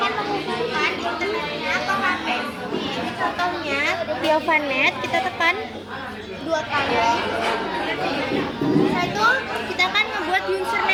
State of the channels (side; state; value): both; identical; correlation 1.00